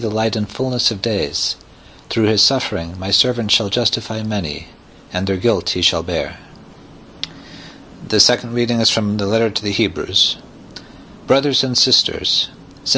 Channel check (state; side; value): identical; both; correlation 1.00